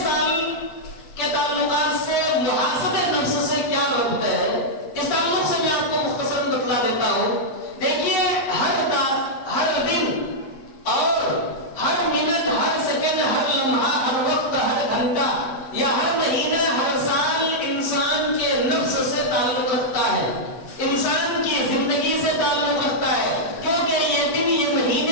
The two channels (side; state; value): right; late; 7.7 ms